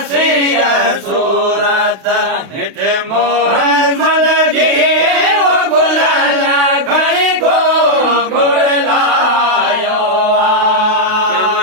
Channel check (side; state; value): left; late; 32 ms